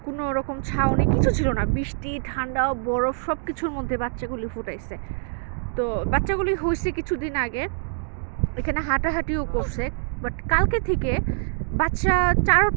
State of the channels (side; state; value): left; silent; digital silence